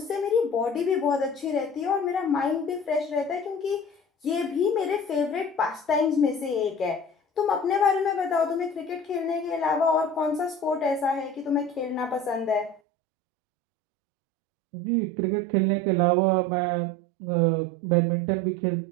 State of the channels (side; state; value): left; drops out; at 12.8 s